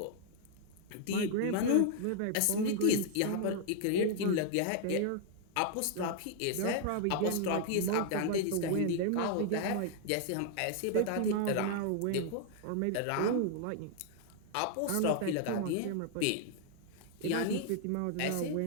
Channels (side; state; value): both; different; correlation 0.00